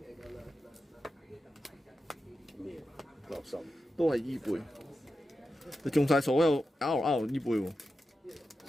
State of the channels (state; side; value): normal; both; correlation 0.90